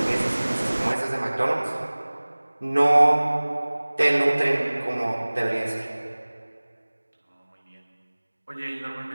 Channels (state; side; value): inverted; both; correlation -1.00